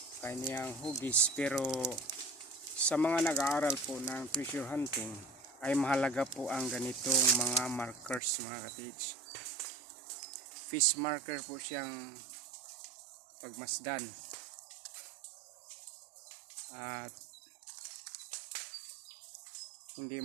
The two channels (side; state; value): left; drops out; at 8.2 s